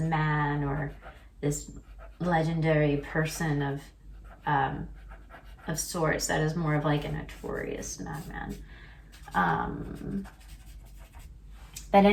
or this legendary person of sorts that is more of like a notorious madman. But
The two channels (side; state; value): both; identical; correlation 1.00